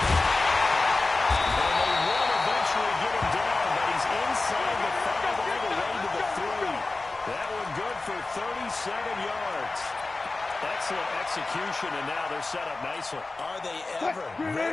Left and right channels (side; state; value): right; quieter; 3.4 dB